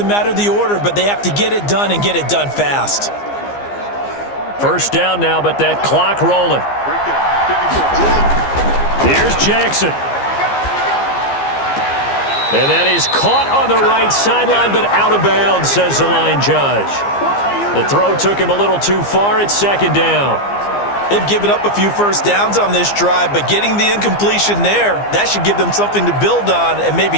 matter the order, but they have to get it done and get it done fast. First down now, but that clock rolling. Here's Jackson. And that is caught on the right sideline, but out of bounds, says the line judge. The throw took him a little too far. It's 2nd down. They've given up a few 1st downs on this drive, but getting the incompletion there, that should give them something to build on and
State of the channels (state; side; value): late; right; 15 ms